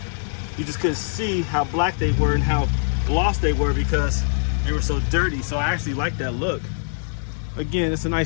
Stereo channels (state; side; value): silent; right; 64 dB below the other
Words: You just couldn't see how black they were and how gloss they were because they were so dirty. So I actually like that look. Again, it's a